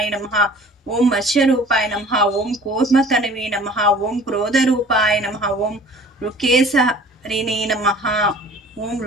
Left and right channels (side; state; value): both; normal; correlation 0.47